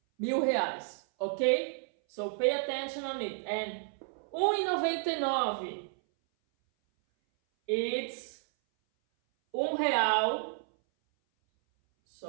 R$1,000, okay? So pay attention on it. And 1,99, it's R$1,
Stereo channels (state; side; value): silent; left; 57 dB below the other